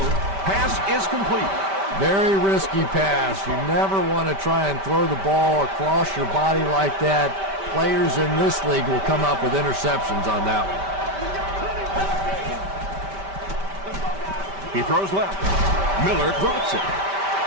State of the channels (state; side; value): late; left; 5.1 ms